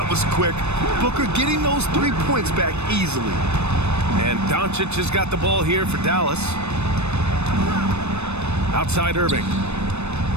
was quick. Booker getting those 3 points back easily. And Doncic has got the ball here for Dallas. Outside Irving.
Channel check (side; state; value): left; late; 0.81 ms